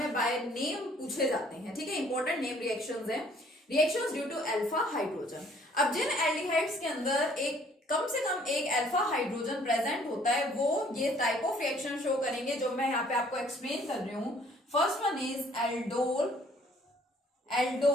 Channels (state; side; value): normal; both; correlation 0.59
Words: बाय नेम पूछे जाते हैं, ठीक है, इंपॉर्टेंट नेम रिएक्शंस हैं। Reactions due to alpha hydrogen. अब जिन एल्डिहाइड्स के अंदर एक कम से कम एक अल्फा हाइड्रोजन प्रेजेंट होता है, वो ये टाइप ऑफ रिएक्शन शो करेंगे जो मैं यहाँ पे आपको एक्सप्लेन कर रही हूँ। First one is